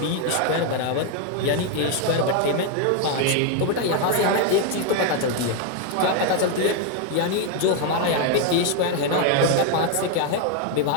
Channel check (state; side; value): different; both; correlation 0.01